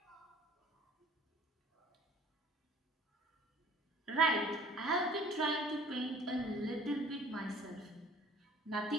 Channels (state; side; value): normal; both; correlation 0.50